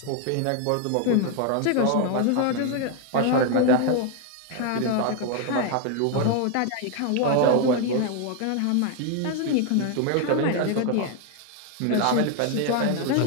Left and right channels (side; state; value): both; different; correlation 0.01